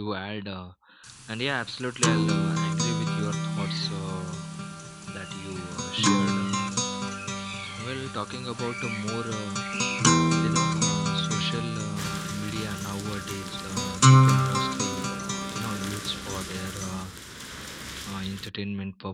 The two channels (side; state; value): both; identical; correlation 1.00